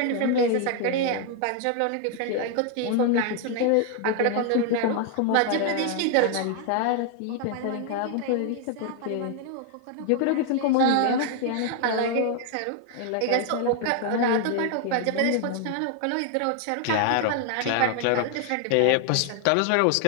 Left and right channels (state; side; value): different; both; correlation 0.00